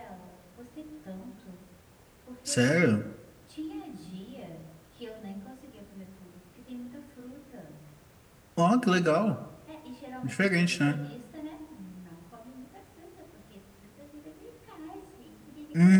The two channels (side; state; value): both; identical; correlation 1.00